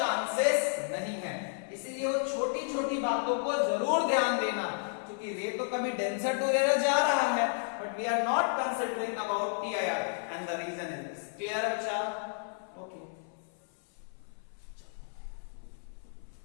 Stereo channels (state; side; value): silent; right; 56 dB below the other